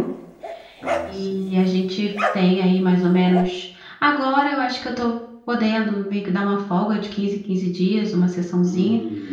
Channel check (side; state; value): both; identical; correlation 1.00